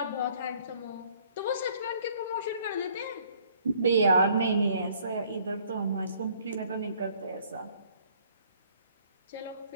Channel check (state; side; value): inverted; both; correlation -0.61